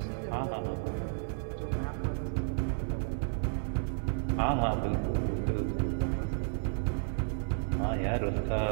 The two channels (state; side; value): silent; left; 56 dB below the other